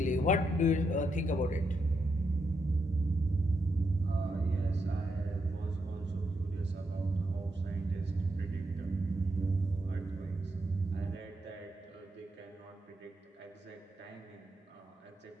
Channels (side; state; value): both; normal; correlation 0.81